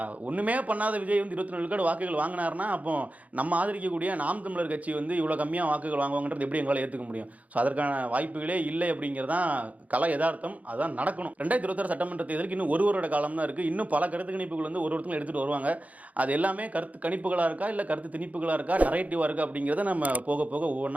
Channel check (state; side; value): late; left; 0.071 ms